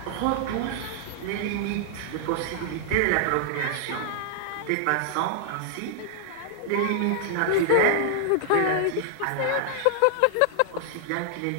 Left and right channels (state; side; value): different; both; correlation -0.01